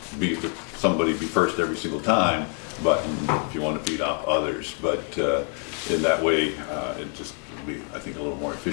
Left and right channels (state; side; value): quieter; right; 39.9 dB